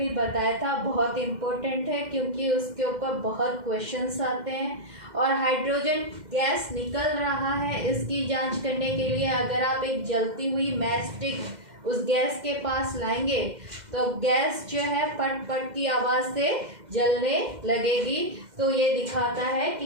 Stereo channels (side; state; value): left; late; 2.1 ms